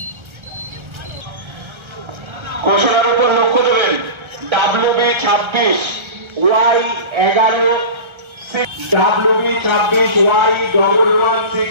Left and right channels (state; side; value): late; left; 1.3 ms